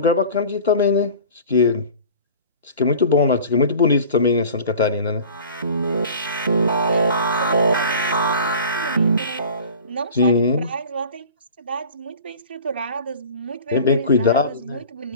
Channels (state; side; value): inverted; both; correlation -0.41